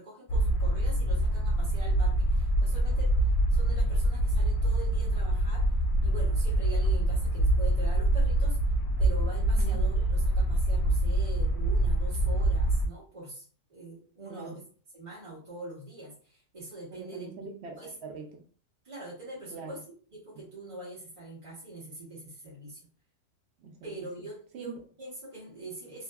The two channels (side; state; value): both; normal; correlation 0.60